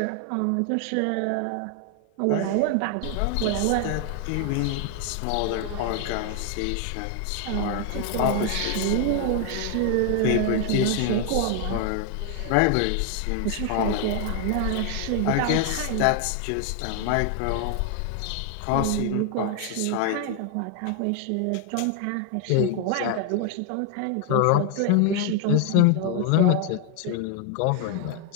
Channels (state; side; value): different; both; correlation 0.00